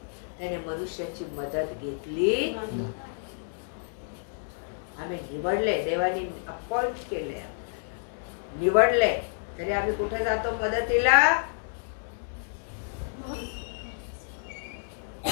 त्याने मनुष्याची मदत घेतली. आम्ही निवडले, देवाने अपॉइंट केले, निवडले, तरी आम्ही कुठे जातो मदतीला.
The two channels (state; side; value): silent; right; digital silence